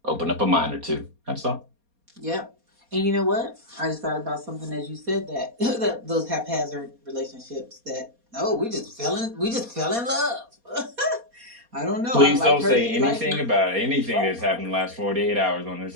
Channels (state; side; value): late; left; 4.2 ms